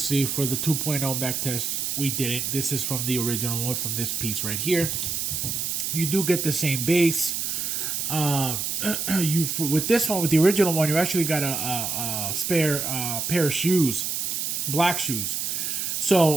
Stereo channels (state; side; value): noise; right; hiss, 1 dB below the sound